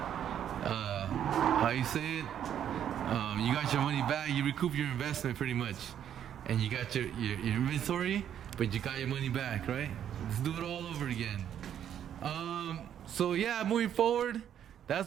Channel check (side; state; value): left; quieter; 9.7 dB